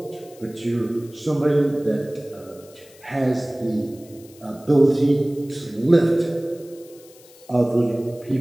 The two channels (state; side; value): noise; left; hiss, 24 dB below the sound